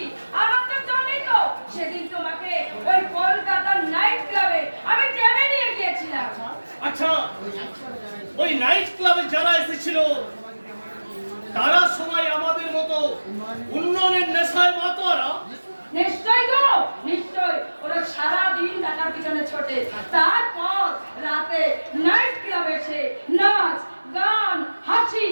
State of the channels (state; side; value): inverted; both; correlation -1.00